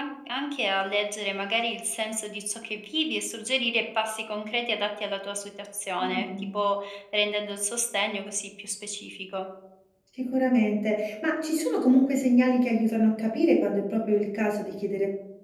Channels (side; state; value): both; identical; correlation 1.00